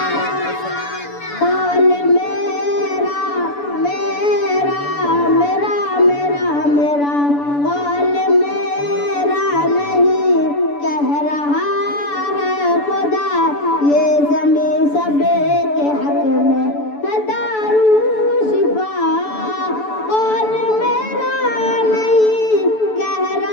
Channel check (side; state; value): right; late; 6.9 ms